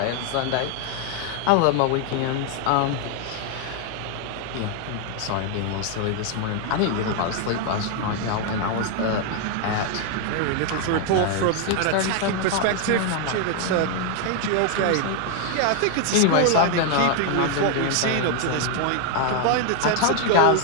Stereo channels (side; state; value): both; different; correlation 0.00